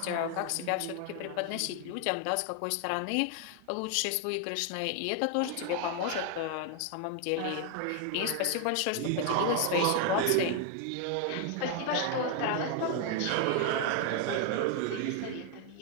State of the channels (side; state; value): both; different; correlation 0.01